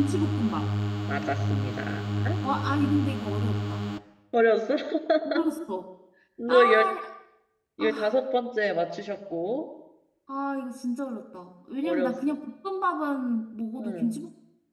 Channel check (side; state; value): both; identical; correlation 1.00